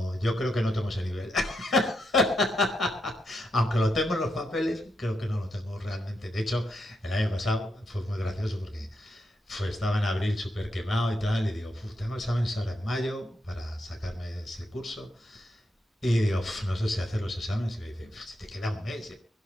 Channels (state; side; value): normal; both; correlation 0.82